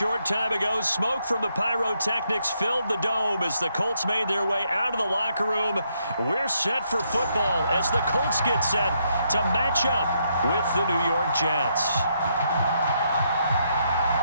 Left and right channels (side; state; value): both; inverted; correlation -0.76